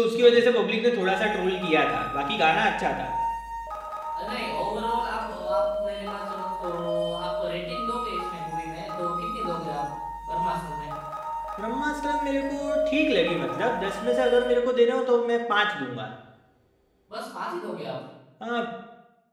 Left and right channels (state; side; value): identical; both; correlation 1.00